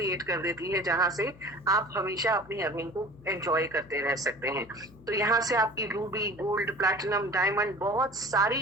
कर देती है जहां से आप हमेशा अपनी अर्निंग को एंजॉय करते रह सकते हैं। तो यहाँ से आपकी रूबी, गोल्ड, प्लैटिनम, डायमंड, बहुत सारी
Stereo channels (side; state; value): left; noise; hum, 23 dB below the sound